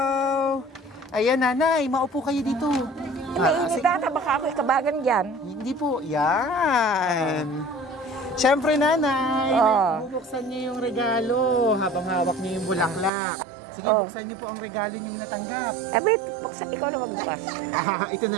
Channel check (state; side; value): drops out; left; at 13.1 s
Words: Ayan, nanay, maupo kayo dito. Mainit ata, baka ako'y kabagan dyan. Hindi po, yan. Siyempre, nanay, bubuksan niyo yung regalo habang hawak niyo yung bulaklak. Sige, buksan niyo po ang regalo niyong natanggap. Abit, ikaw na magbukas. Ito na